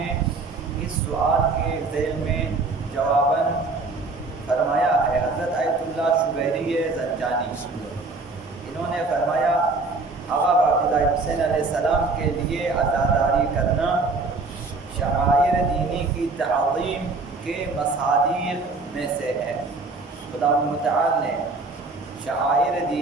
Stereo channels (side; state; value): left; quieter; 3.7 dB